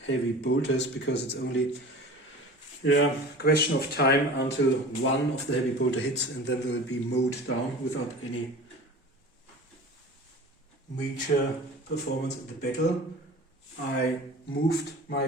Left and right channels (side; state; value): both; normal; correlation 0.38